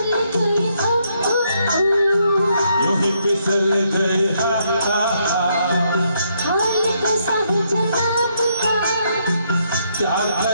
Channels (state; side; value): inverted; both; correlation -0.74